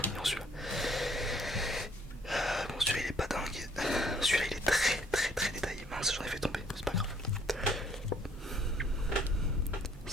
mignon celui-là. Bon celui-là il est pas dingue. Celui-là il est très détaillé. Mince, j'en ai fait tomber, c'est pas grave.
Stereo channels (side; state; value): both; normal; correlation 0.63